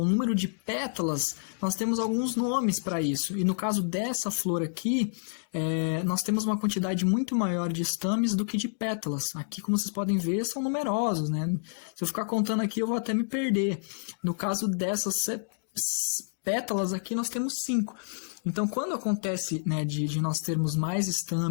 o número de pétalas, nós temos alguns nomes para isso. E no caso dessa flor aqui, nós temos uma quantidade muito maior de estames do que de pétalas. Aqui, como vocês podem ver, são numerosos, né? Se eu ficar contando aqui, eu vou até me perder. No caso dessas pétalas aqui, nós temos 5. Então, quando acontece, né, de nós termos mais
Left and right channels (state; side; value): silent; right; digital silence